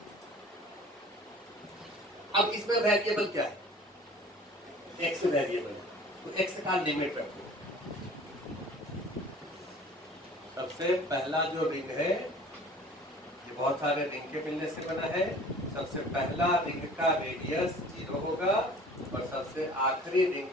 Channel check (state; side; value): normal; both; correlation 0.46